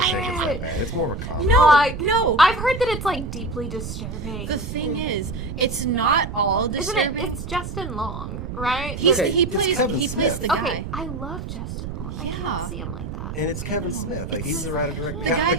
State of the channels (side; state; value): right; noise; rumble, 7 dB below the sound